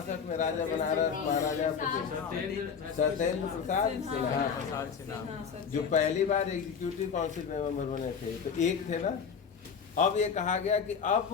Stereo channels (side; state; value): right; quieter; 6.4 dB